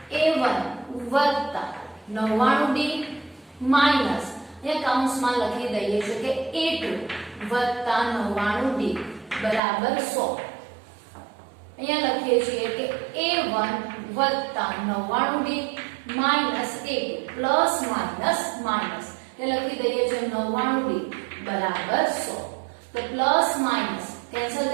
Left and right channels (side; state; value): left; drops out; at 9.6 s